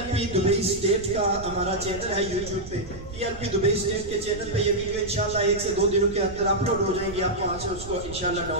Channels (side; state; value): right; noise; rumble, 14 dB below the sound